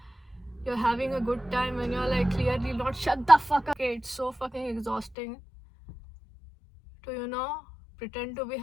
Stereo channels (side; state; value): right; drops out; at 5.2 s